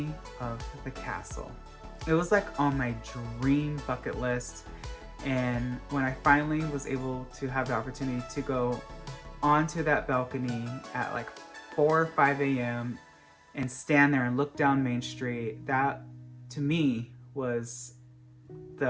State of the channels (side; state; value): both; identical; correlation 1.00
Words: of the castle. It was like on my dream bucket list, and when I finally was able to have the opportunity to go onto that balcony at like 4 or 5 a.m. and stand there and look down Main Street, that to me was